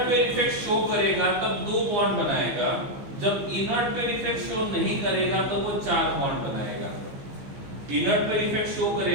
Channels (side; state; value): left; late; 15 ms